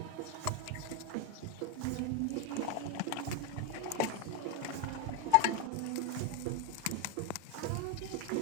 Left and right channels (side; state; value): both; different; correlation 0.01